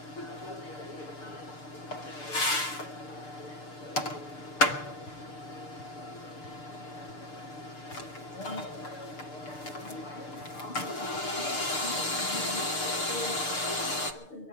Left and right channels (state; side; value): late; right; 6.7 ms